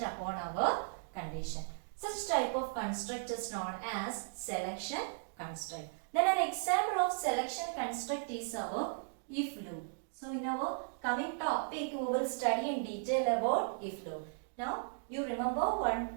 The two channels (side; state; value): left; silent; digital silence